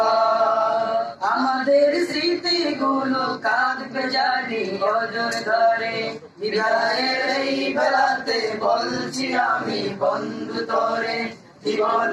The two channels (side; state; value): both; identical; correlation 1.00